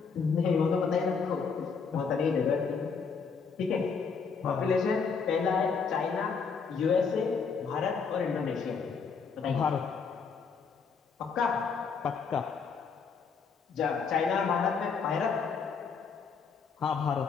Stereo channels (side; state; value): right; quieter; 5.5 dB